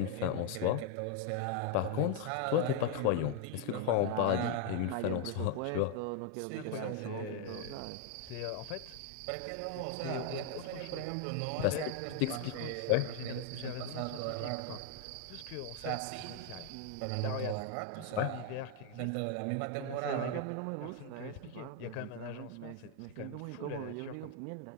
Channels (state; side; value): different; both; correlation 0.01